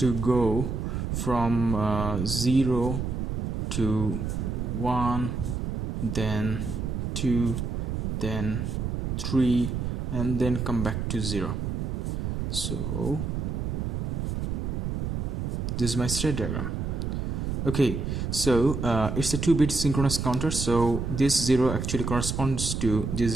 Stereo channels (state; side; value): noise; right; rumble, 2 dB below the sound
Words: go from 0 to 1, then 2, then 3, and then come back to 0. So this is my state diagram. Okay, so it's a 2-bit synchronous counter, so this 0 actually corresponds to this